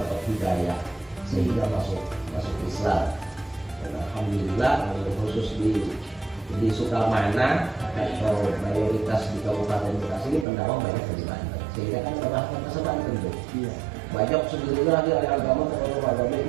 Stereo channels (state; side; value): drops out; left; at 10.5 s